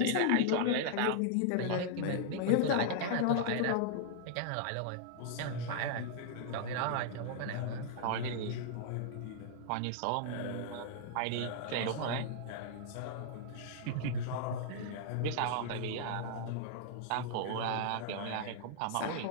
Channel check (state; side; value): different; both; correlation -0.01